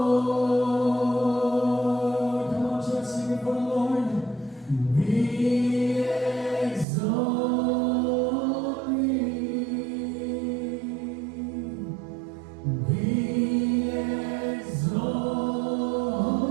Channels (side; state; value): left; drops out; at 6.9 s